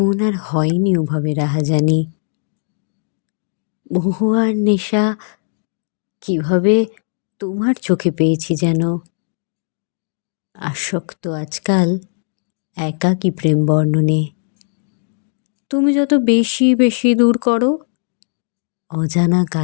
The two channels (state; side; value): silent; right; digital silence